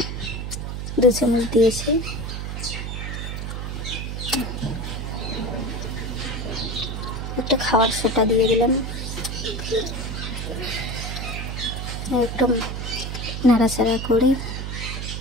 দিয়েছি। একটা খাওয়ার সোটা দিয়ে দিলাম, একটু নাড়াচাড়া করে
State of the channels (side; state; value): right; noise; hum, 5 dB below the sound